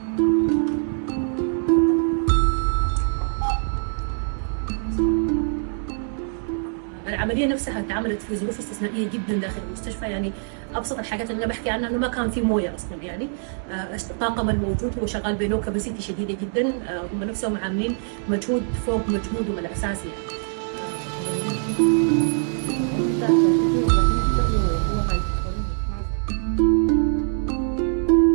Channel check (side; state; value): left; silent; digital silence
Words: العملية نفسها اتعملت في ظروف استثنائية جدا داخل المستشفى، يعني أبسط الحاجات اللي أنا بحكي عنها إنه ما كان في موية أصلا، يعني الطاقم الموجود هو شغال بلو كاباسيتي شديدة جدا، هم نفسهم عاملين مجهود فوق مجهودهم الأساسي